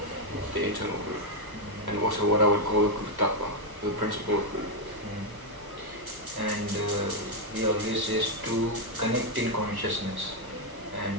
the internal guru. And also what I would call the Guru Tattva, the principle of Guru. And he always says to connect in consciousness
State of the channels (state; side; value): late; left; 1.2 ms